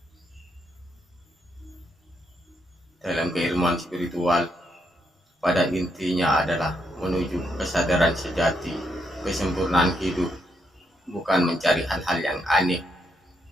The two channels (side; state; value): both; normal; correlation 0.79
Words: Dalam keilmuan spiritual, pada intinya adalah menuju kesadaran sejati, kesempurnaan hidup, bukan mencari hal-hal yang aneh